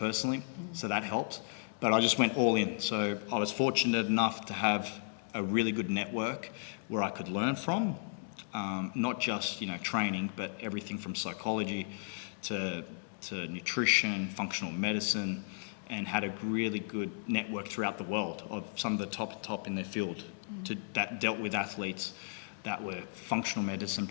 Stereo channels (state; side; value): silent; right; digital silence